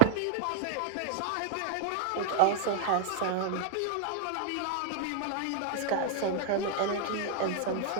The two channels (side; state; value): both; different; correlation -0.01